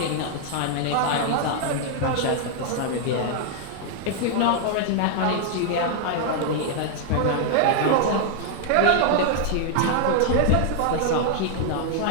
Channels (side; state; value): both; different; correlation 0.00